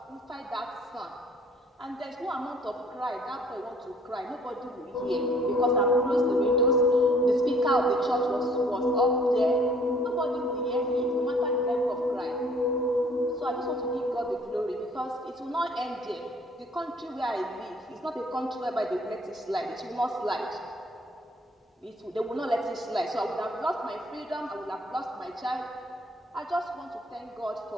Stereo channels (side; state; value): both; normal; correlation 0.57